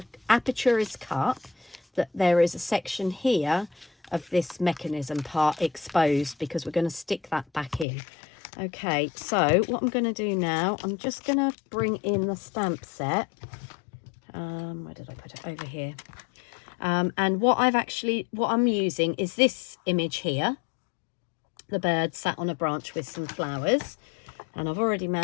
aperture is cut, that there is a section here of this mechanism part exposed, because we're going to stick that back in. Okay, so what I'm going to do now, I'm just going to bring in the stamp set. Where did I put it? Over here. And what I'm using is this image here, the bird sat on a branch with some flowers, and I've already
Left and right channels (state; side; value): drops out; right; at 7.9 s